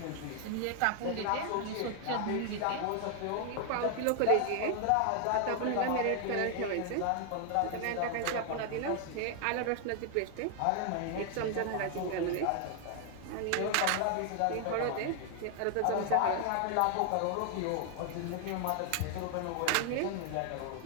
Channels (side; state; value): both; different; correlation 0.00